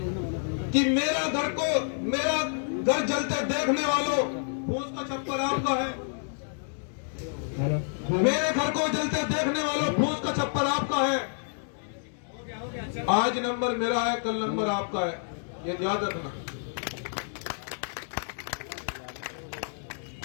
कि मेरा घर जलते देखने वालों, फूस का छप्पर आपका है। मेरे घर को जलते देखने वालों, फूस का छप्पर आपका है। आज नंबर मेरा है, कल नंबर आपका है, ये याद रखना।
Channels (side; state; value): right; silent; digital silence